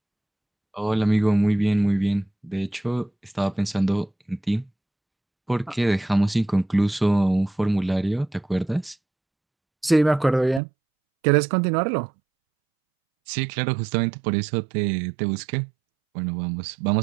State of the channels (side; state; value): left; drops out; at 10.6 s